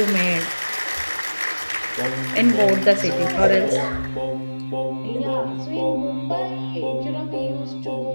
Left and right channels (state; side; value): inverted; both; correlation -1.00